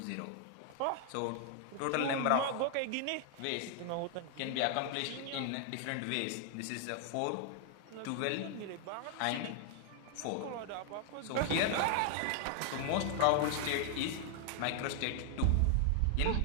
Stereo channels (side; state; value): both; different; correlation 0.00